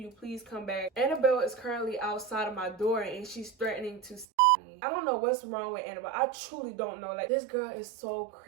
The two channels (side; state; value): left; drops out; at 4.2 s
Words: please come back? Annabelle is currently outside of my door and she's threatening to me. I don't know what's wrong with Annabelle. I truly don't know. Like, this girl is so